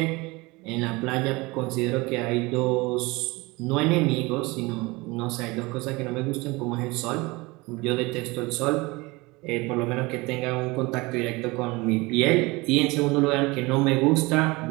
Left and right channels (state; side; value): quieter; left; 23.6 dB